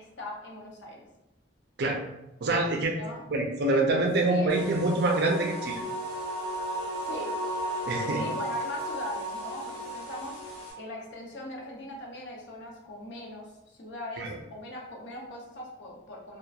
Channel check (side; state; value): both; normal; correlation 0.28